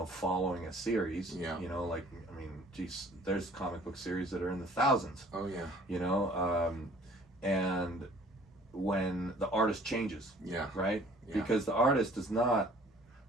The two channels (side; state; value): both; normal; correlation 0.53